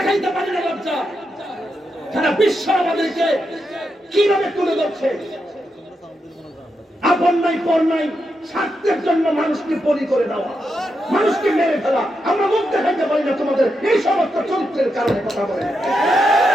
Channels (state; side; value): normal; both; correlation 0.85